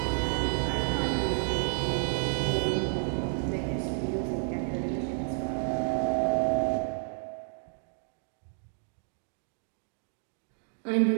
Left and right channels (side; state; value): left; silent; digital silence